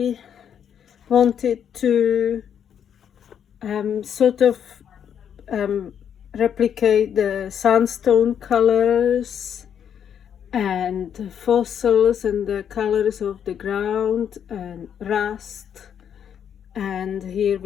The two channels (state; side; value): quieter; right; 8.6 dB